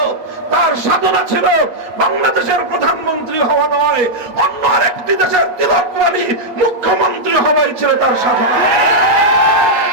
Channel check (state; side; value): late; left; 8.2 ms